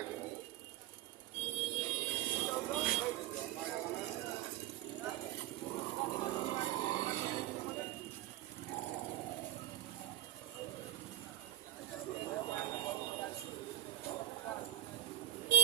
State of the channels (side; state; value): left; quieter; 13.6 dB